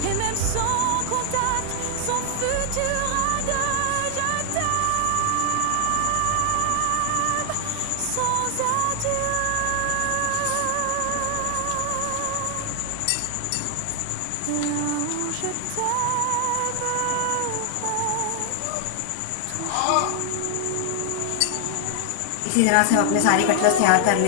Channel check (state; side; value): different; both; correlation 0.00